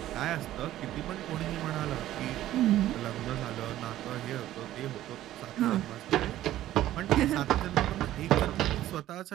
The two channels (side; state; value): left; quieter; 13.8 dB